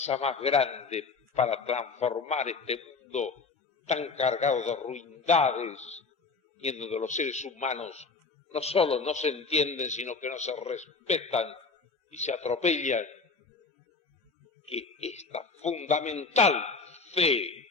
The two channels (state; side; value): quieter; right; 4.4 dB